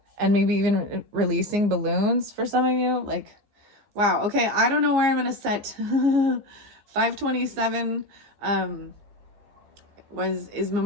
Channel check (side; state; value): left; late; 15 ms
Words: and maybe even releasing balloons for some of you. Like, wow, okay, I don't know where I'm gonna set 527 is